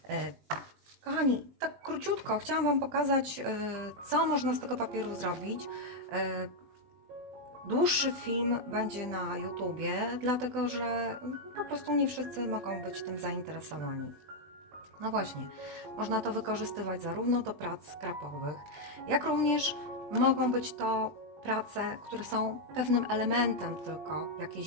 Kochani, tak króciutko chciałam Wam pokazać, co można z tego papieru zrobić. Dłuższy film będzie na YouTubie, dlatego że po prostu nie wszyscy mogą być tym zainteresowani. No właśnie, można to wykorzystywać zarówno do prac skrapowych, jak również mogą być to prace, które są pewnym elementem tylko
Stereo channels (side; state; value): left; late; 20 ms